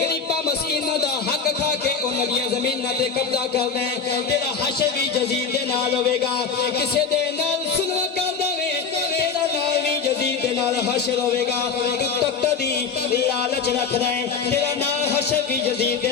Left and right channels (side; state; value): right; quieter; 5.6 dB